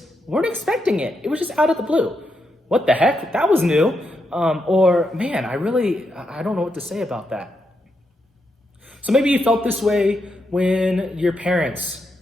weren't expecting it? It was just out of the blue. What the heck? That was new. Or, man, I don't know what to say about that. So maybe you felt this way when your parents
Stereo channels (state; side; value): normal; both; correlation 0.82